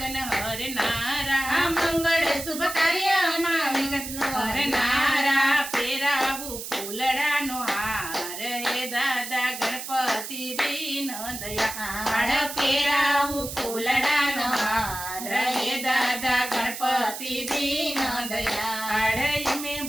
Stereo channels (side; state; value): right; noise; hiss, 8 dB below the sound